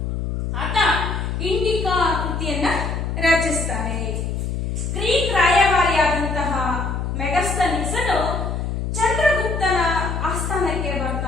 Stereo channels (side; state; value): left; noise; hum, 2 dB below the sound